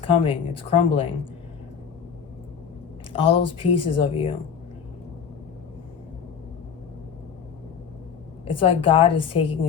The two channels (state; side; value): quieter; right; 7.1 dB